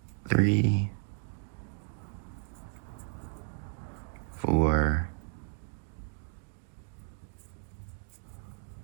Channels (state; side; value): silent; left; digital silence